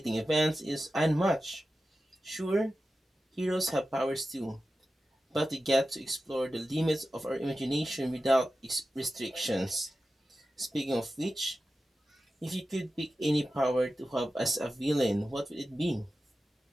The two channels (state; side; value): normal; both; correlation 0.93